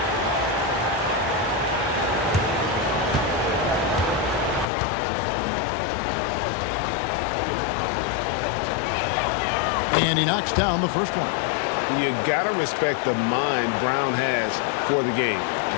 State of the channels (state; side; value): drops out; right; at 4.7 s